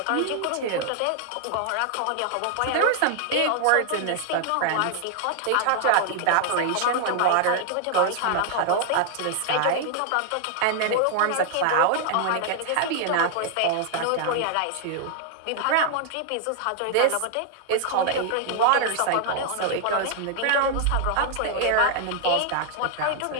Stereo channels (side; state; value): both; different; correlation 0.00